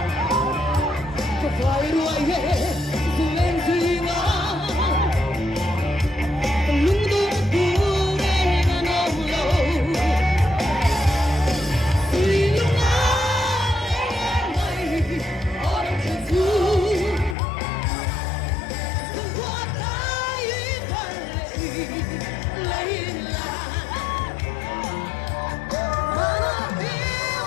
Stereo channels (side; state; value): right; drops out; at 17.4 s